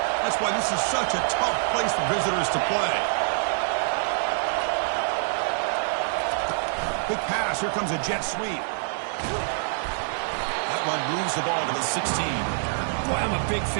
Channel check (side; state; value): left; silent; digital silence